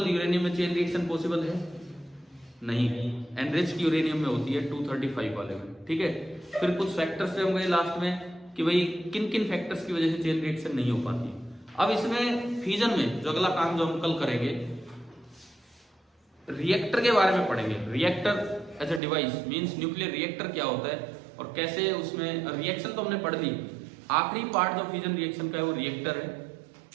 यूरेनियम में चेन रिएक्शन पॉसिबल है? नहीं, एनरिच्ड यूरेनियम में होती है 235 वाले में। ठीक है, फिर कुछ फैक्टर्स से हम गए लास्ट में कि भाई किन किन फैक्टर्स की वजह से चेन रिएक्शन नहीं हो पाती। अब इसमें फ्यूजन में जो अगला काम जो हम कल करेंगे, रिएक्टर के बारे में पढ़ेंगे। Reactor as a device means nuclear reactor क्या होता है और कैसे उसमें रिएक्शन तो हमने पढ़ ली, आखिरी पार्ट जो फ्यूजन रिएक्शन का है वो रिएक्टर है।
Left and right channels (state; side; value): drops out; left; at 19.0 s